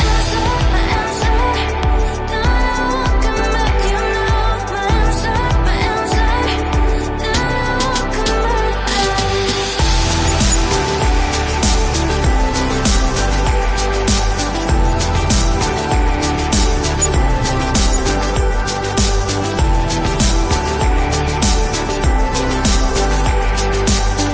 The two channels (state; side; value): identical; both; correlation 1.00